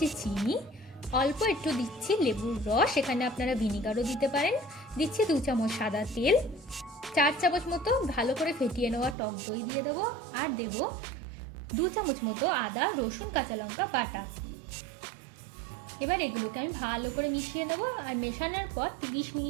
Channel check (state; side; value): drops out; left; at 9.2 s